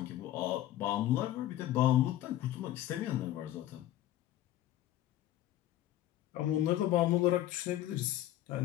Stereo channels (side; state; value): right; quieter; 13.7 dB